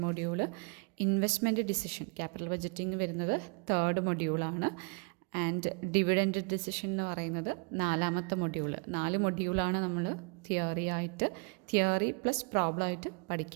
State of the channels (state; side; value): quieter; left; 35.8 dB